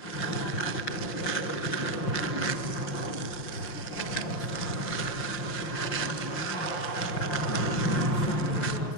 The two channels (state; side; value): late; right; 5.8 ms